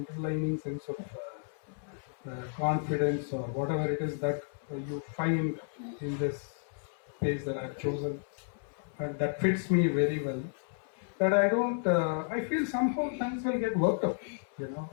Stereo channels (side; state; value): right; silent; 56 dB below the other